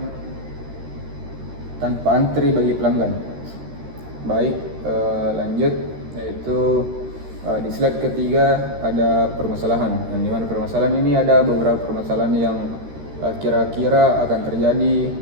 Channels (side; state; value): left; late; 13 ms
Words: bagi pelanggan. Baik, lanjut, yaitu di slide ketiga ada permasalahan. Yang dimana permasalahan ini ada beberapa permasalahan yang kira-kira akan terjadi